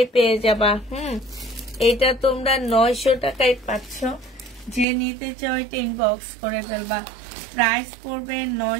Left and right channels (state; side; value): drops out; left; at 4.9 s